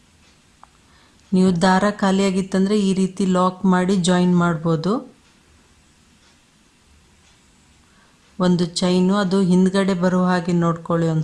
ನೀವು ದಾರ ಖಾಲಿಯಾಗಿತ್ತಂದರೆ ಈ ರೀತಿ ಲಾಕ್ ಮಾಡಿ ಜಾಯಿನ್ ಮಾಡ್ಬೋದು. ಒಂದು ಚೈನು ಅದು ಹಿಂದ್ಗಡೆ ಬರೋ ಹಾಗೆ ನೋಡ್ಕೊಳ್ಳಿ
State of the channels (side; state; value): both; identical; correlation 1.00